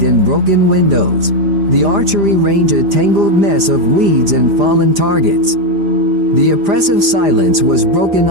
and broken windows. The archery range a tangled mess of weeds and fallen targets. The oppressive silence was broken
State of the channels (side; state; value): left; late; 5.0 ms